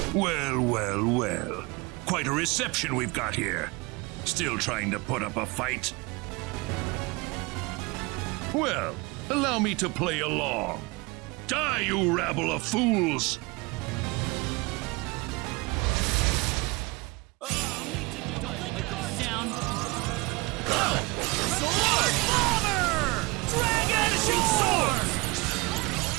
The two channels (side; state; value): left; quieter; 25.1 dB